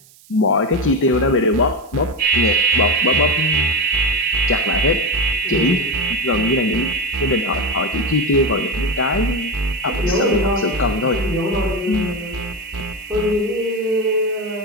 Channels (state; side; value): noise; right; hiss, 26 dB below the sound